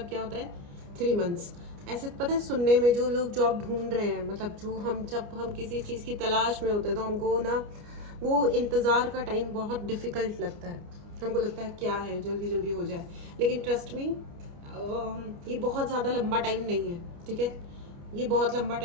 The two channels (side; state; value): left; late; 29 ms